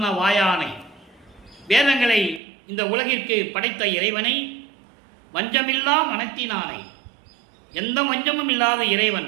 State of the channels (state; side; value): drops out; left; at 2.4 s